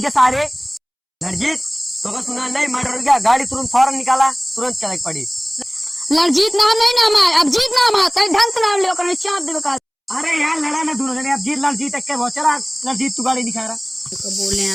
सारे। लड़जीत तो सुना नहीं, मर्डर हो गया। गाड़ी तुरंत फौरन निकाला, तुरंत चल पड़ी। लड़जीत नाम नहीं नाम है, अभिजीत नाम है। तेरे ढंग से नाम ले कर चाप देवे का। अरे यार लड़ा ना दोनों जने, अभिजीत लड़जीत एक के बहुत चला। लड़जीत तू गाड़ी दिखा रहा बोले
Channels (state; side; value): identical; both; correlation 1.00